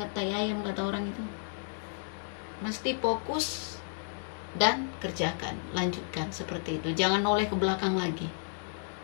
tai ayam kata orang itu. Mesti fokus dan kerjakan, lanjutkan seperti itu. Jangan noleh ke belakang lagi.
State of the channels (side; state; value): right; silent; 56 dB below the other